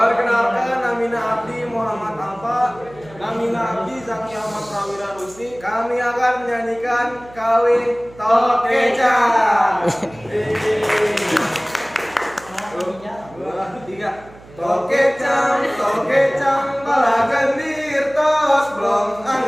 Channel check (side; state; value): right; noise; hum, 22 dB below the sound